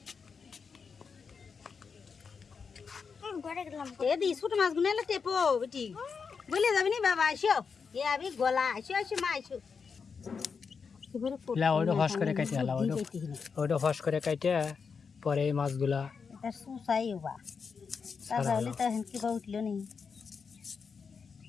ছোট মাছ গুলো এলে টেপো বেটি বলে যাবি নি বাবা আইসো এ আমি গলা আইসো মা আইসো ওইটা ফস করে কাটে হলা, ওইটা ফস করে কাটে পরে এই মাছগুলা এটা সুসাই বা তাহলে তো হেন কি বা উঠলো নি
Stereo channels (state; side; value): quieter; right; 5.6 dB